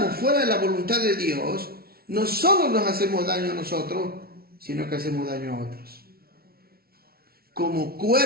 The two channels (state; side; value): late; left; 0.44 ms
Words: fuera de la voluntad de Dios, no solo nos hacemos daño a nosotros, sino que hacemos daño a otros. Como